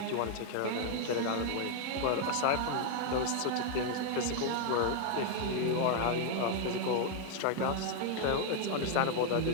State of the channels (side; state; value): both; different; correlation 0.01